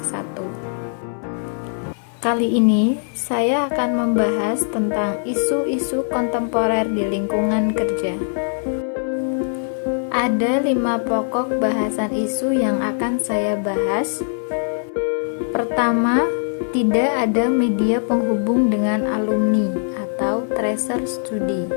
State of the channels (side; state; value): right; silent; 57 dB below the other